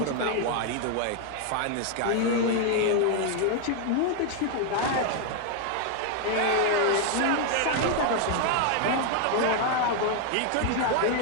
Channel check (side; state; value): both; different; correlation 0.00